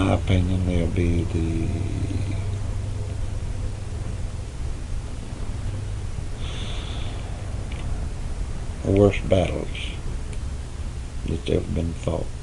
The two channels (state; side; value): identical; both; correlation 1.00